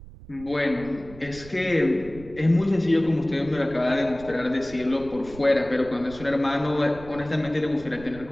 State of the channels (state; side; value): noise; right; rumble, 17 dB below the sound